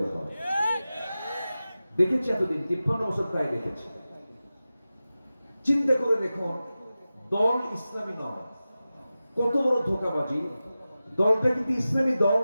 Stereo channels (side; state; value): both; inverted; correlation -0.95